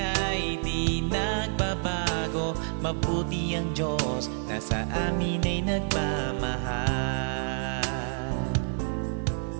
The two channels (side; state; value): left; silent; 59 dB below the other